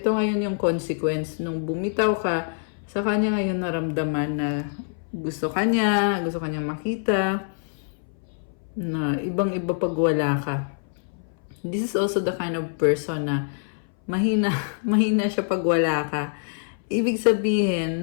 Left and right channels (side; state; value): right; silent; 61 dB below the other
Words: ngayon yung consequence. Nung bumitaw ka, sa kanya ngayon naramdaman na gusto kanyang makita, na ibang-iba pag wala ka. This is also the kind of person na mahina siya pag wala ka. Ibig sabihin,